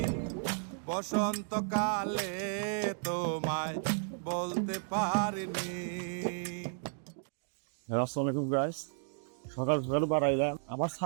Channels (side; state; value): left; silent; digital silence